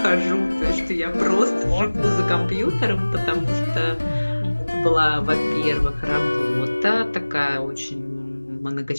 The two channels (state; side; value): inverted; both; correlation -1.00